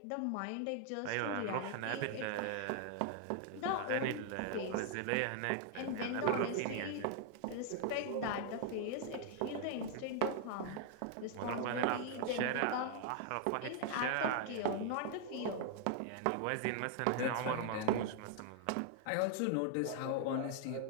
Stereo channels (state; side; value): different; both; correlation 0.00